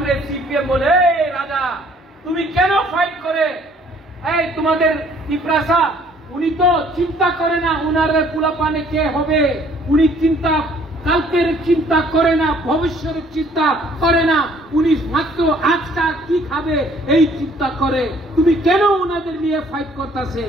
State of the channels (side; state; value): both; normal; correlation 0.59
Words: সিপিএম বলে রাজা তুমি কেন ফাইট করে? এই তোমাদের তিপ্রাসা উনি তো চিন্তা করে না উনার কুলাপানে কে হবে, উনি চিন্তা কালকের চিন্তা করে না, ভবিষ্যতের চিন্তা করে না, উনি মাত্র আজটা কি খাবে এই চিন্তা করে। তুমি কেন ওনাদের নিয়ে ফাইট করতেছে?